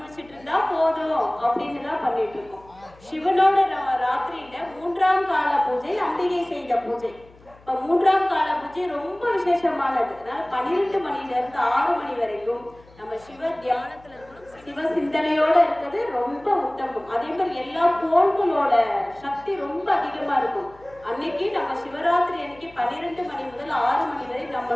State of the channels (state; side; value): noise; left; hum, 26 dB below the sound